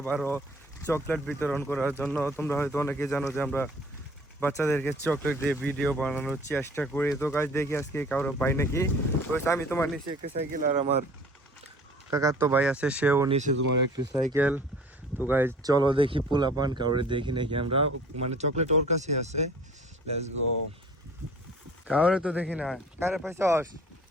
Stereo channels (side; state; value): both; normal; correlation 0.49